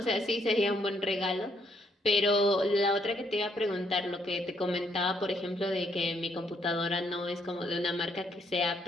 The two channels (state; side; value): normal; both; correlation 0.72